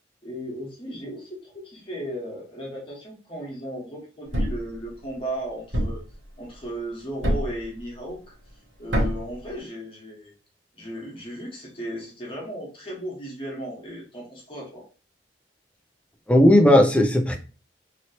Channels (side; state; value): both; normal; correlation 0.80